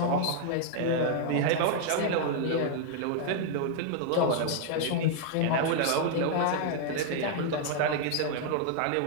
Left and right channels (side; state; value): both; different; correlation 0.00